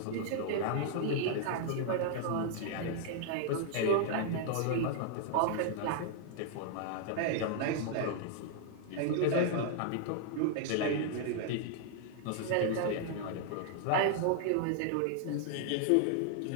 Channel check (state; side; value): different; both; correlation 0.00